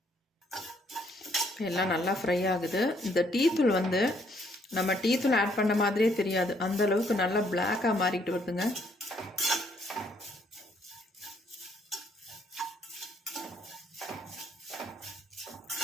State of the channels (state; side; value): normal; both; correlation 0.68